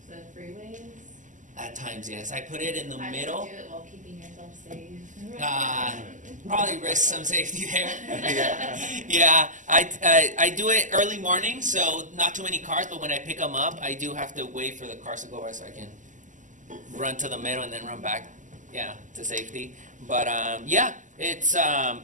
the freeways? At times, yes. I put it in the How do you middle. do it while keeping yourself safe? Probably risk some safety there. Yeah. Yeah, I do it early morning, so not too many cars, but when I pick them up, I do have to wait for the cars to go by so I can run to the middle and then run back, yeah, to safety. But yeah, it's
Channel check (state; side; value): late; left; 0.37 ms